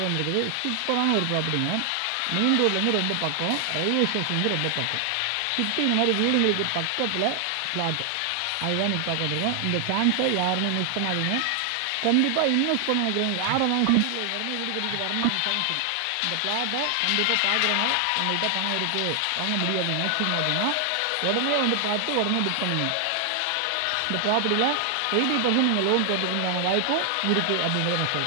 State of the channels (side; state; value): both; different; correlation 0.00